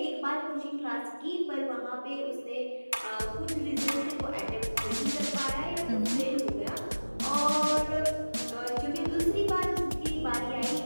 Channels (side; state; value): both; inverted; correlation -1.00